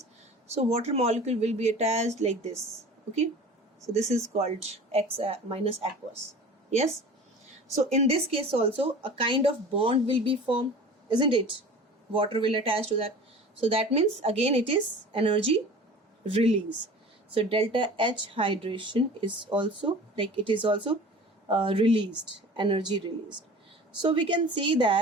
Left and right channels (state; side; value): normal; both; correlation 0.40